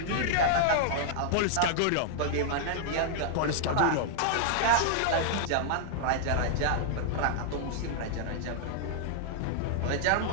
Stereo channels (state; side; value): different; both; correlation -0.01